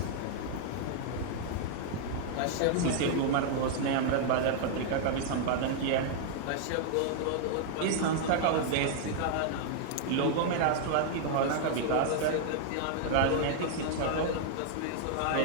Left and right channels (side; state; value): both; different; correlation -0.01